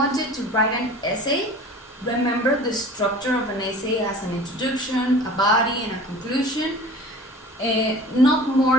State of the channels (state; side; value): normal; both; correlation 0.42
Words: you to write an essay. Remember the structure of an essay as an introduction, a body, and a conclusion. not